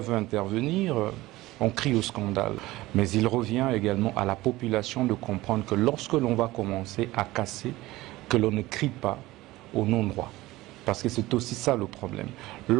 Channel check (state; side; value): quieter; left; 18.4 dB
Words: intervenir, on crie au scandale. Mais il revient également à la population de comprendre que lorsque l'on va commencer à casser, que l'on ne crie pas au non-droit. Parce que c'est aussi ça le problème.